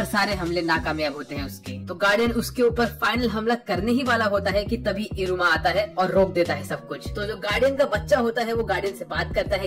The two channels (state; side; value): identical; both; correlation 1.00